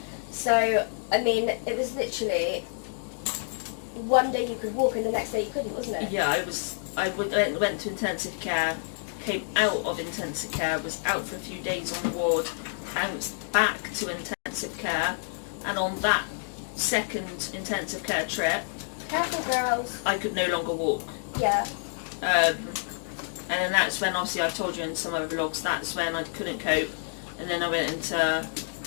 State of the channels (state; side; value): silent; right; digital silence